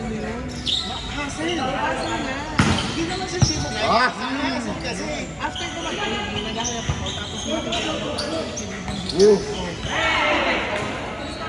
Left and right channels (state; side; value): identical; both; correlation 1.00